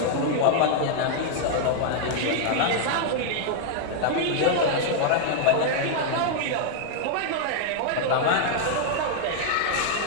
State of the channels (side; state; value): both; different; correlation 0.00